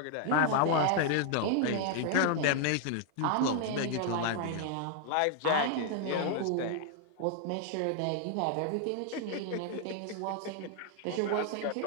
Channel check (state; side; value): different; both; correlation 0.00